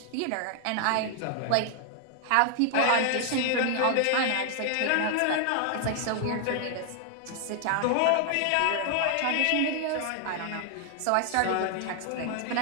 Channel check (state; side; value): different; both; correlation 0.00